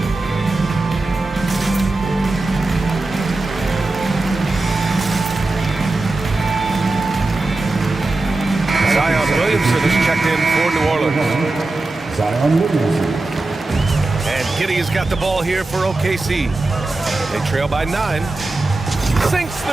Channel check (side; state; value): left; quieter; 3.1 dB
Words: Williamson is checked in for New Orleans. Zion Williamson. And Giddey has got the ball here for OKC. They trail by 9. Sinks